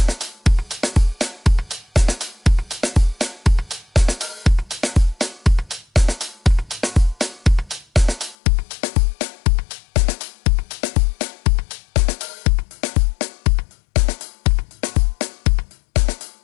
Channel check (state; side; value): drops out; right; at 8.3 s